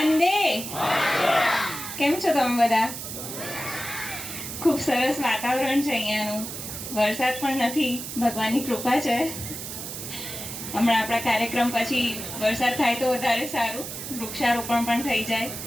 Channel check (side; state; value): right; noise; hiss, 8 dB below the sound